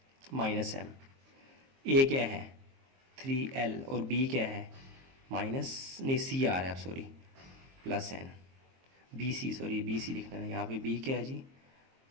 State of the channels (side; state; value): left; late; 22 ms